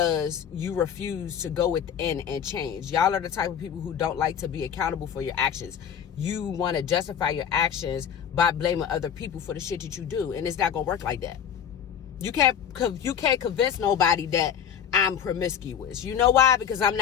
you refuse to go within and change. Y'all are the type of people who don't like to be accountable for your actions. You want to justify your actions by blaming other people for the shit that you do, and it's not gonna work like that. You can't convince nobody that I'm promiscuous. You know why? Because I'm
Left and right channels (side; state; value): right; quieter; 8.5 dB